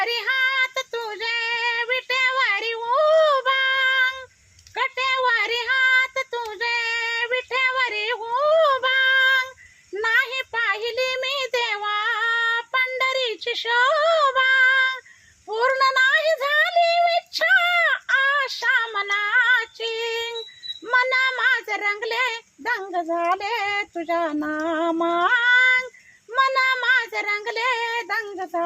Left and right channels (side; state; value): both; identical; correlation 1.00